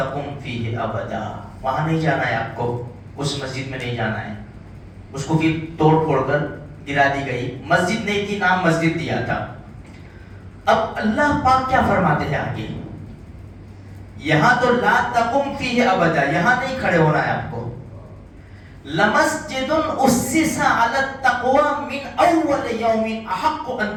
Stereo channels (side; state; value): both; identical; correlation 1.00